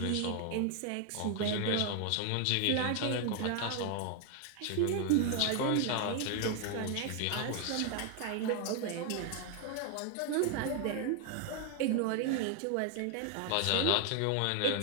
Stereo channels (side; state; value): both; different; correlation 0.01